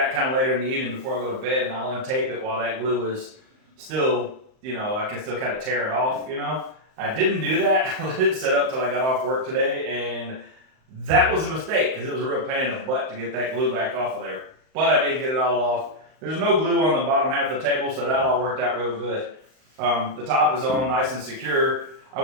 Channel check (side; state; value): left; late; 38 ms